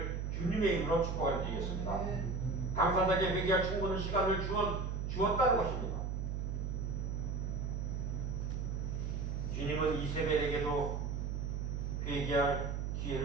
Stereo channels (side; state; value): right; noise; hum, 2 dB below the sound